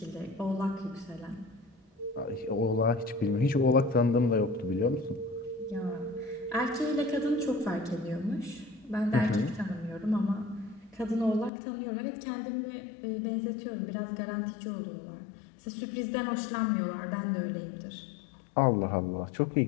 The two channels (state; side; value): drops out; right; at 11.5 s